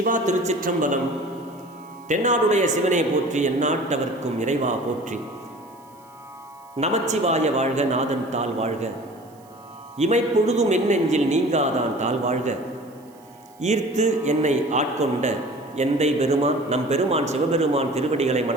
திருச்சிற்றம்பலம். தென்னாடுடைய சிவனை போற்றி, எந்நாட்டவர்க்கும் இறைவா போற்றி. நமச்சிவாய வாழ்க, நாதன் தாள் வாழ்க. இமைப்பொழுதும் என் நெஞ்சில் நீங்காதான் தாள் வாழ்க. ஈர்த்து என்னை ஆட்கொண்ட எந்தை பெருமான் நம் பெருமான் சிவபெருமான் திருவடிகளை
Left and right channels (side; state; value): right; noise; hiss, 30 dB below the sound